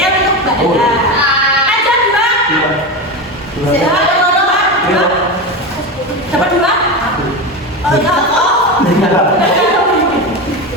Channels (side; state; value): both; normal; correlation 0.20